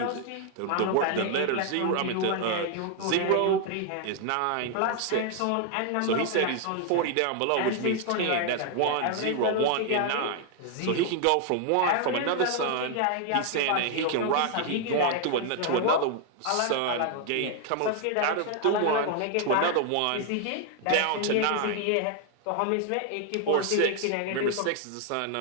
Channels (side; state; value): both; different; correlation 0.00